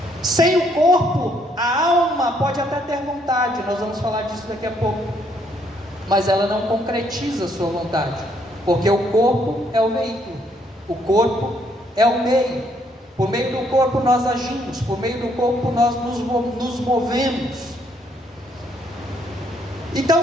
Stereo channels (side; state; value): both; normal; correlation 0.70